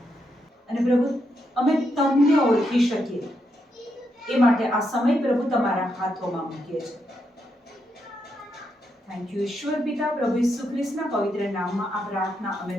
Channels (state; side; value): normal; both; correlation 0.81